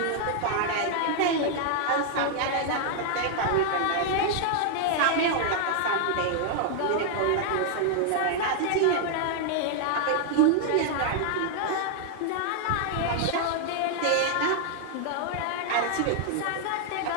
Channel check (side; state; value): both; different; correlation 0.00